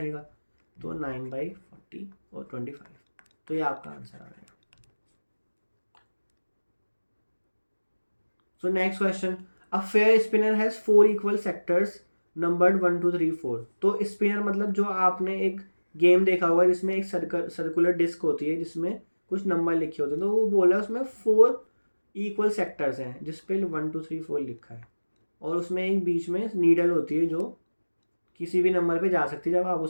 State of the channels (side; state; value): both; inverted; correlation -1.00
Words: तो 9/40 और 25। तो ये आपका आंसर आ गया। सो next question, a fair spinner has 4 equal sectors numbered 1 2 3 4। तो स्पिनर मतलब जो आपने एक गेम देखा होगा जिसमें एक सर्कुलर डिस्क होती है जिसमें कुछ नंबर लिखे होते हैं, तो वो बोला उसमें 4 इक्वल सेक्टर्स हैं जिसपे 1 2 3 4 लिखा है, और उसमें एक बीच में नीडल होती है जो किसी भी नंबर पे जा सकती है जब आप